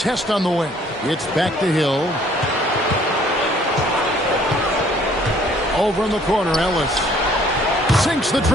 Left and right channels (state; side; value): normal; both; correlation 0.59